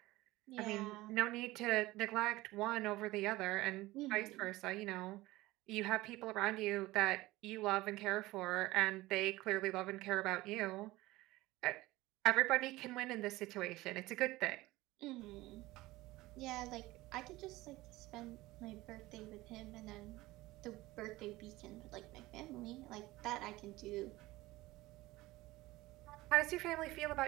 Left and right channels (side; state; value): left; quieter; 18.8 dB